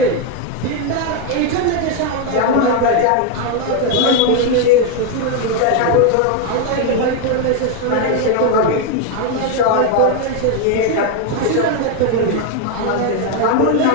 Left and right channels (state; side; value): different; both; correlation 0.01